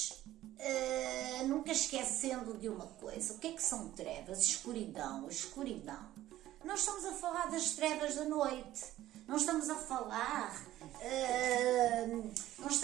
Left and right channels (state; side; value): quieter; left; 14.3 dB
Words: nunca esquecendo de uma coisa, o que é que são trevas? Escuridão, escuridão. Não estamos a falar das trevas da noite, não estamos a falar